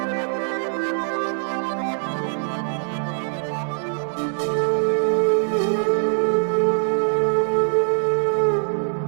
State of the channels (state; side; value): silent; left; digital silence